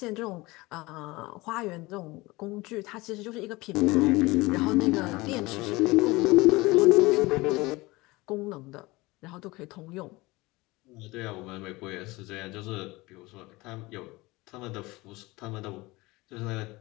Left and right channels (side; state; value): right; quieter; 21.8 dB